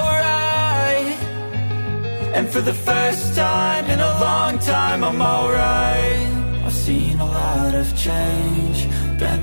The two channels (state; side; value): inverted; both; correlation -1.00